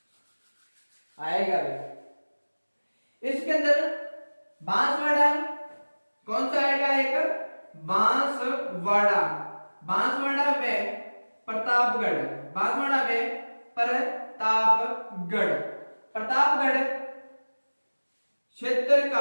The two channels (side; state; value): both; inverted; correlation -1.00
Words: आएगा भी। इसके अंदर बांसवाड़ा कौन सा आएगा, एक बांसवाड़ा, बांसवाड़ा व प्रतापगढ़, बांसवाड़ा व प्रतापगढ़। प्रतापगढ़ क्षेत्र